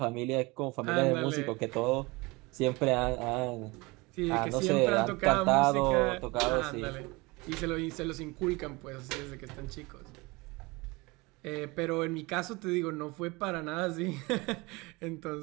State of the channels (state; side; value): quieter; left; 24.4 dB